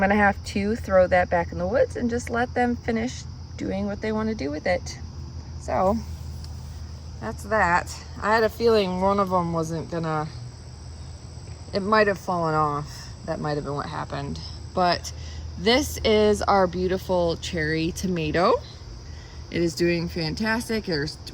gonna have to throw that back in the woods and just let them finish doing what they want to do with it. So that's that. I had a feeling one of them wasn't gonna, it might have fallen off. That might have been what happened. But this is our beautiful cherry tomato. It is doing fantastic.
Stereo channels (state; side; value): identical; both; correlation 1.00